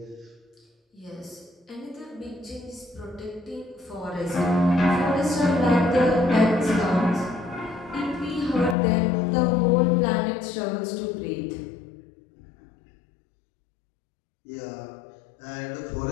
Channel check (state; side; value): drops out; right; at 8.8 s